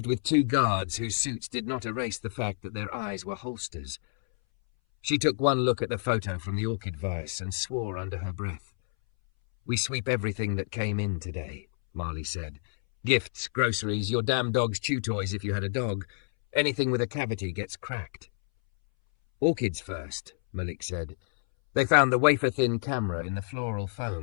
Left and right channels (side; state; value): right; silent; 59 dB below the other